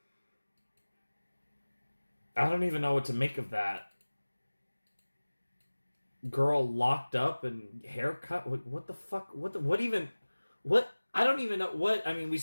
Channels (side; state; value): both; inverted; correlation -1.00